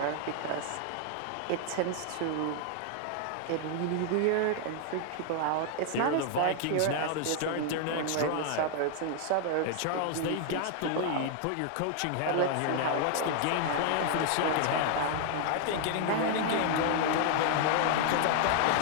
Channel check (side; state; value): both; different; correlation 0.00